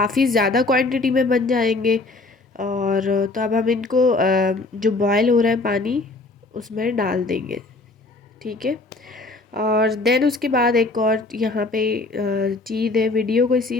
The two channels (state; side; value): quieter; right; 3.3 dB